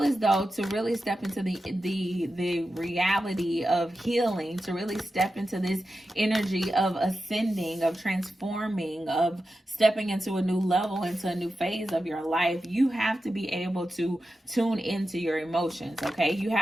as though to really step into the reality of healing, to really step into this energy of ascending, of transforming, of stepping into a new level, into a new phase of your life, you have to be able to tune into your emotions. Okay. You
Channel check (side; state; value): both; normal; correlation 0.91